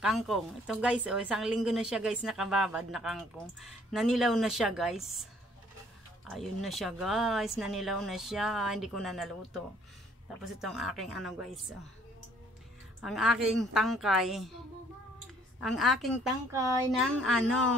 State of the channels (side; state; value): both; normal; correlation 0.61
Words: Kangkong. Ito guys, isang linggo na siya guys nakababad na kangkong. Nanilaw na siya guys. Ayun na siya guys, nanilaw na siya, hindi ko na naluto. Tapos itong aking ano guys, ang aking tangkay ng